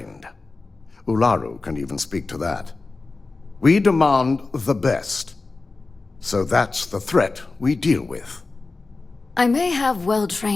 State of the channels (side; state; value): right; quieter; 3.7 dB